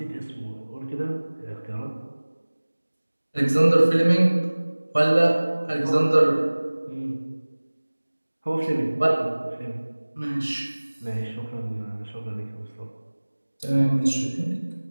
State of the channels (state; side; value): inverted; both; correlation -1.00